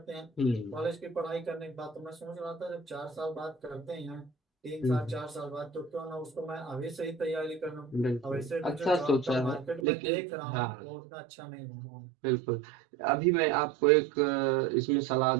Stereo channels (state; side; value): drops out; left; at 9.9 s